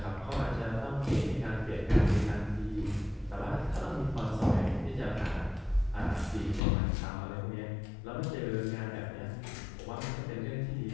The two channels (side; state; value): right; drops out; at 6.6 s